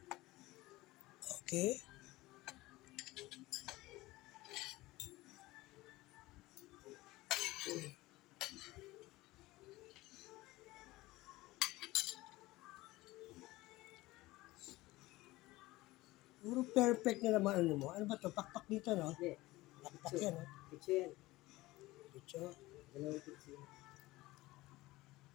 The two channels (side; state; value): right; quieter; 19.2 dB